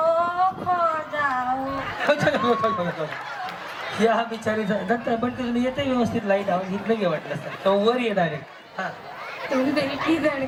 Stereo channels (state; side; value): identical; both; correlation 1.00